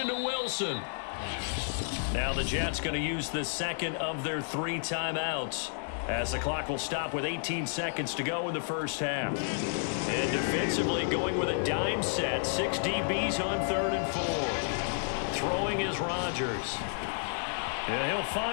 to Wilson. Now the Jets going to use the 2nd of their 3 timeouts, as the clock will stop with 18 seconds to go in the first half. And defensively going with a dime set. 6 DBs on 3rd and 4. Throwing is Rodgers. And he'll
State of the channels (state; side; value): silent; right; digital silence